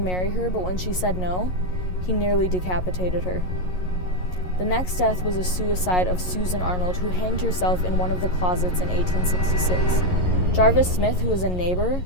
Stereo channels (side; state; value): right; late; 11 ms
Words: her, but when she said no, he nearly decapitated her. The next death was a suicide of Susan Arnold, who hanged herself in one of the closets in 1866. Jarvis Smith, who was a neighbor,